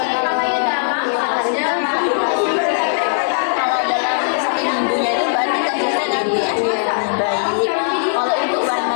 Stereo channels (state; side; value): silent; right; digital silence